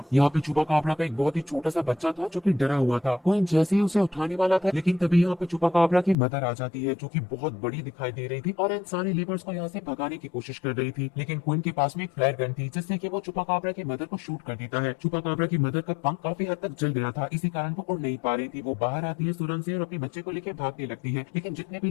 यहाँ पे चुपा काबरा का एक बहुत ही छोटा सा बच्चा था जो कि डरा हुआ था। क्विन जैसे ही उसे उठाने वाला था, लेकिन तभी यहाँ पे चुपा काबरा की मदर आ जाती है जो कि बहुत बड़ी दिखाई दे रही थी और इन सारे लेबर्स को यहाँ से भगाने की कोशिश कर रही थी। लेकिन क्विन के पास में एक फ्लायर गन थी जिससे कि वो चुपा काबरा की मदर को शूट कर देता है। चुपा काबरा की मदर का पंख काफी हद तक जल गया था, इसी कारण वो उड़ नहीं पा रही थी। वो बाहर आती है सुरंग से और अपने बच्चे को लेकर भागने लगती है, लेकिन जितने भी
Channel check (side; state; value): right; drops out; at 6.2 s